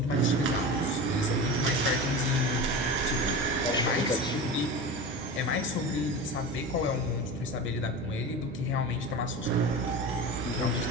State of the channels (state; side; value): normal; both; correlation 0.29